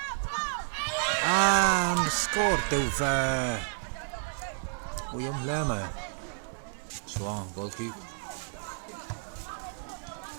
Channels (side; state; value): left; silent; digital silence